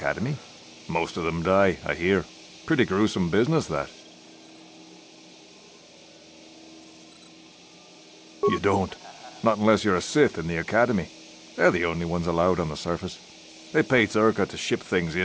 Most of them die, I hear. Pretty gruesome business, that. You don't. Not unless you're a Sith in the academy. They're the only ones allowed on the surface. They pay Zerka to ship things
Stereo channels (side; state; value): both; identical; correlation 1.00